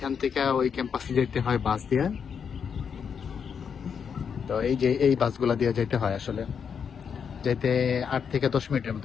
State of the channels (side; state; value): right; quieter; 6.9 dB